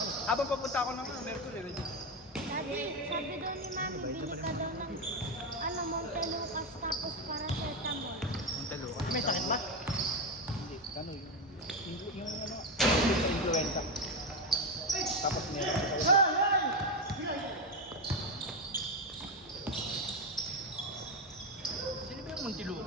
Habang papunta ako ng Mercury, ready. Sabi daw ni Mami, bili ka daw ng Montelucas tapos paracetamol. Montelucas. May sakit ba? Hindi. Ano yung ano? Influenza. Tapos meron ko sa Sino ba yung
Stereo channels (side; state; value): both; normal; correlation 0.11